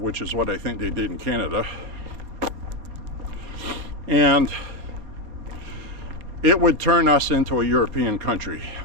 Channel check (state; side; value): late; left; 4.3 ms